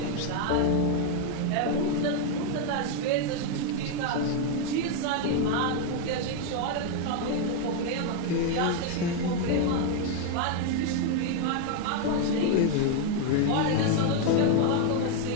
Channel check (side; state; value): both; different; correlation 0.01